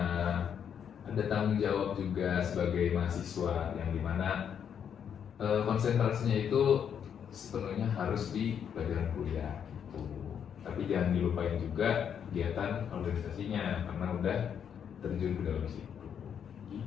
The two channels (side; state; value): right; quieter; 8.1 dB